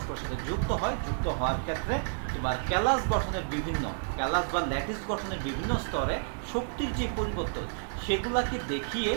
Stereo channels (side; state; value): left; silent; digital silence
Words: সাথে যুক্ত হয়, যুক্ত হওয়ার ক্ষেত্রে তোমার ক্যালাস গঠনের বিভিন্ন, ক্যালাস বা ল্যাটিস গঠনের বিভিন্ন স্তরে শক্তির যে পরিবর্তন সেগুলাকে দেখিয়ে